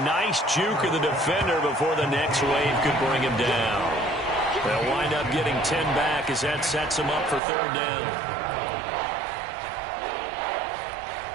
nice juke of the defender before the next wave could bring him down. They'll wind up getting 10 back as that sets them up for 3rd down.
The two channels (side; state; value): left; drops out; at 7.4 s